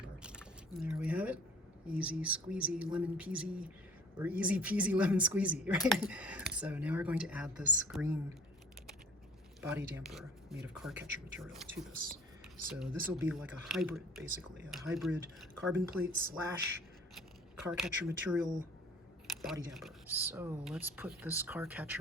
And there we have it. Easy squeezy lemon peasy, or easy peasy lemon squeezy, right? So now we're going to add this green body damper made of car catcher material to this. So this will be like a hybrid, basically, a hybrid carbon plate slash car catcher material body damper. So let's put this car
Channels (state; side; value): normal; both; correlation 0.48